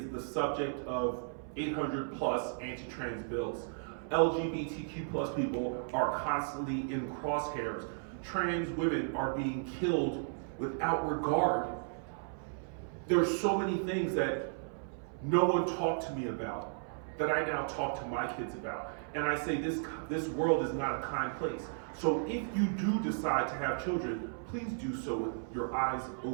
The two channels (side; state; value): left; silent; 55 dB below the other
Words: the subject of 800 plus anti-trans bills. LGBTQ plus people are constantly in crosshairs. Trans women are being killed without regard. There's so many things that no one talked to me about that I now talk to my kids about. And I say this world is not a kind place. So if you do decide to have children, please do so with your eyes